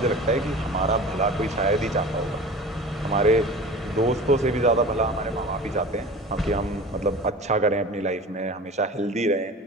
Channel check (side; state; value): both; normal; correlation 0.37